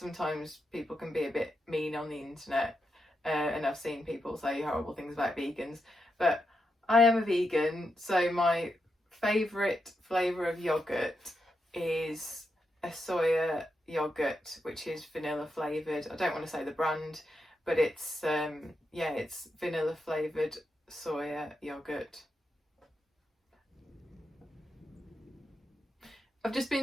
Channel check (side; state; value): both; normal; correlation 0.85